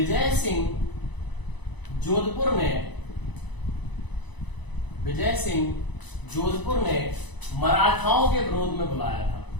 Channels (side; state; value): right; late; 1.0 ms